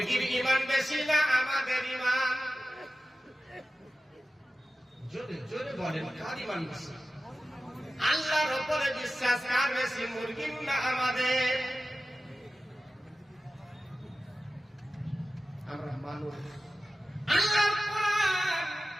ঈমান বেশি না আমাদের ঈমান? জোরে জোরে বলেন, কার ঈমান বেশি? আল্লাহর উপরে বিশ্বাস কার বেশি, মুরগির না আমাদের? আমরা মানুষ। আল্লাহর কোরআন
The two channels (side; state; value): both; normal; correlation 0.95